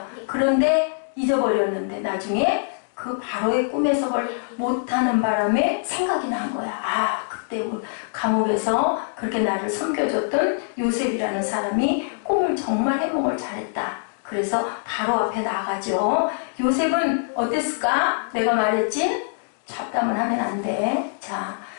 그런데 잊어버렸는데 나중에 그 바로의 꿈 해석을 못하는 바람에 생각이 난 거야. 아, 그때 감옥에서 그렇게 나를 섬겨줬던 요셉이라는 사람이 꿈을 정말 해몽을 잘했다. 그래서 바로 앞에 나가죠. 요셉은 어땠을까? 내가 말했지? 잡담을 하면 안 돼. 자,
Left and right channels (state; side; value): silent; right; digital silence